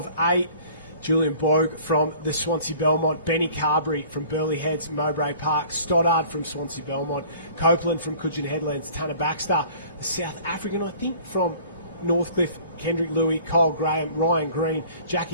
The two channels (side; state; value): both; inverted; correlation -0.50